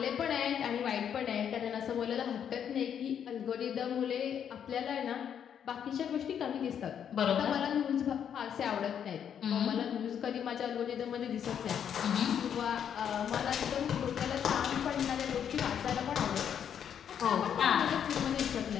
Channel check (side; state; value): right; quieter; 8.6 dB